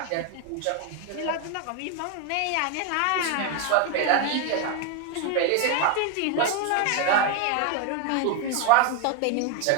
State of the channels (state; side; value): different; both; correlation 0.01